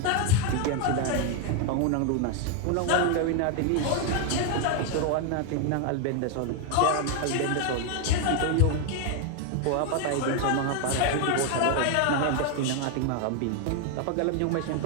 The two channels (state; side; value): different; both; correlation 0.01